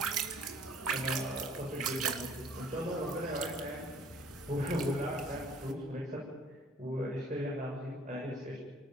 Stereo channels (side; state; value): both; normal; correlation 0.54